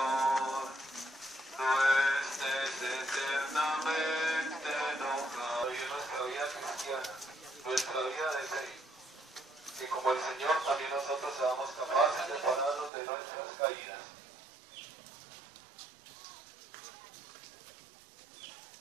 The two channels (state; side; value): drops out; left; at 12.9 s